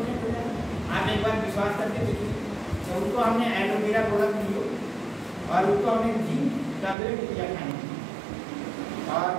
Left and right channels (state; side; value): drops out; left; at 7.0 s